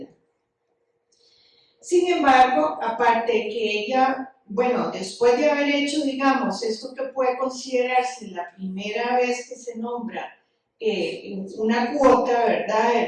Sin embargo, aparte de que ella, bueno, después de haber hecho, digamos, esto que puede considerarse la primera vez que se nombra una cuota, ¿verdad?, de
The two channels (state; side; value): identical; both; correlation 1.00